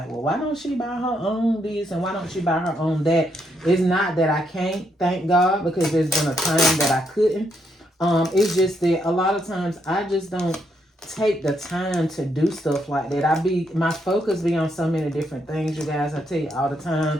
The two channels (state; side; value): normal; both; correlation 0.77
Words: well, why don't she buy her own this and why don't she buy her own that? It's not that I can't, thank God, because there's been a time that I couldn't. It's just that a lot of times I just don't take the time to do stuff like that. My focus be on so many different things, you guys. I tell you all the